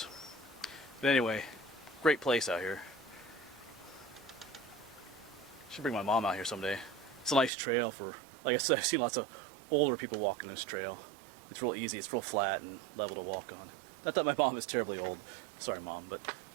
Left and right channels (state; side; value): drops out; left; at 7.5 s